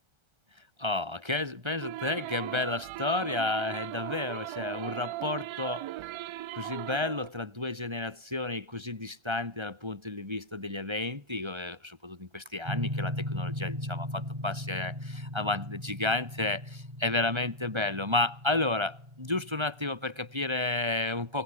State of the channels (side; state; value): left; late; 1.3 ms